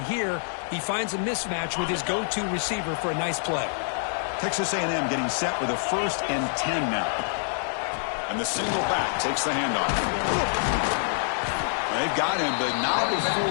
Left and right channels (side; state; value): right; silent; digital silence